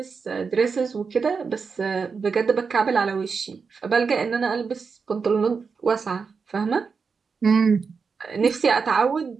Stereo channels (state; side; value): quieter; left; 5.3 dB